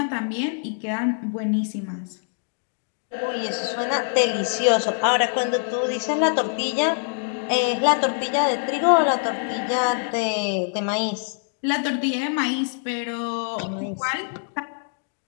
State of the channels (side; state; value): right; silent; digital silence